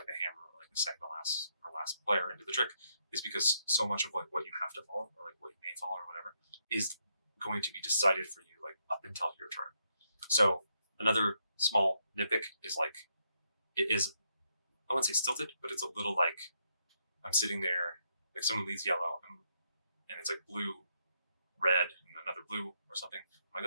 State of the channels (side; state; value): both; inverted; correlation -0.78